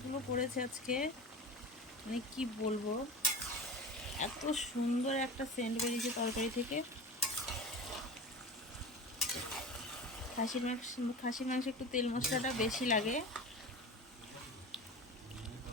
করেছে আজকে, মানে কি বলবো, এত সুন্দর একটা সেন্ট বেরিয়েছে তরকারি থেকে। খাসির মাংস একটু তেল মশলাটা বেশি লাগে,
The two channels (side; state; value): both; normal; correlation 0.30